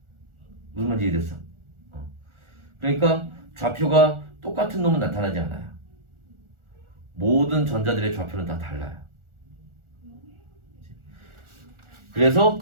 무슨 말인지 이해됐어? 그러니까 좌표가 똑같은 놈은 나타나지 않아요. 모든 전자들의 좌표는 다 달라요. 그래서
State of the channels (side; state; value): left; late; 1.4 ms